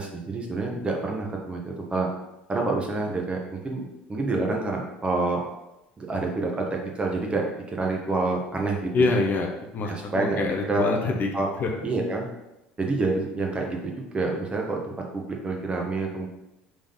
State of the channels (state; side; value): normal; both; correlation 0.64